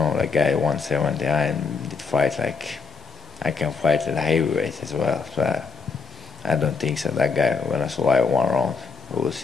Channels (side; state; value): right; quieter; 5.1 dB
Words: like guy 170, I did fight, like, I can fight at heavyweight as well. So I don't think so that guy gonna survive 1 round. We'll